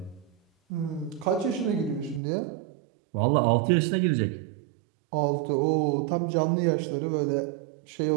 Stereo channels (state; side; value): drops out; left; at 2.2 s